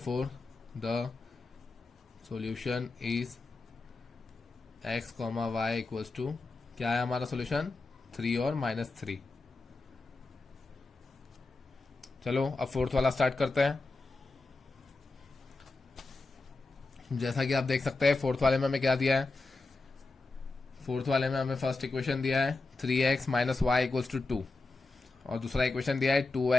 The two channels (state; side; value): quieter; right; 3.5 dB